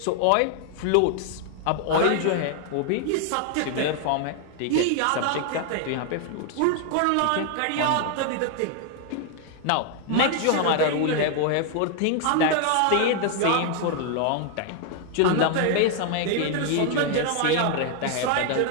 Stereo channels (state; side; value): different; both; correlation 0.00